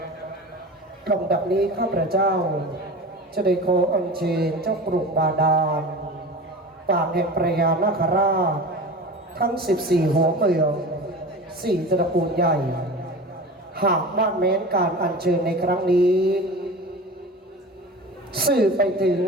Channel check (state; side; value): normal; both; correlation 0.34